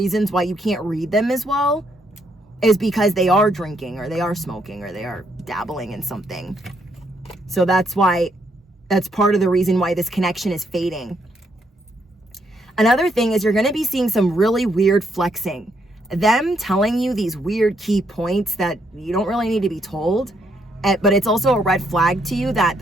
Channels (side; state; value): both; normal; correlation 0.74